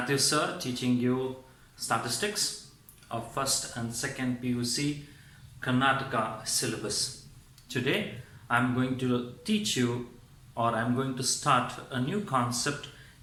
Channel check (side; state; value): both; identical; correlation 1.00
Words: sir teaching you statistics of first and second PUC Karnataka syllabus. Today I'm going to teach you, or I'm going to start a new concept